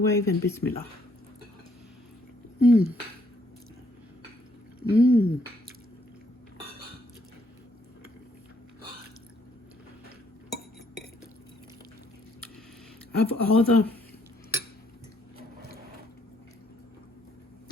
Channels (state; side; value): normal; both; correlation 0.69